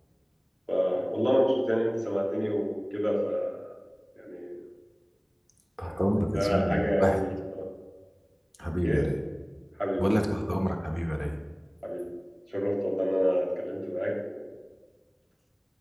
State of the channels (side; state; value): both; identical; correlation 1.00